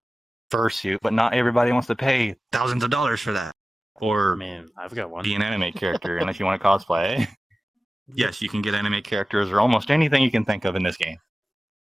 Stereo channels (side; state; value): both; normal; correlation 0.96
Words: fursuit, but not everybody wants to pay thousands of dollars for that. Or Man, I've got one. be an anime character unless you want to cosplay. Yes, you can get anime characters or almost anything you can think of in this game.